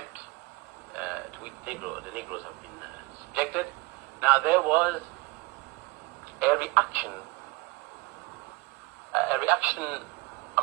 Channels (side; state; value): left; quieter; 23.6 dB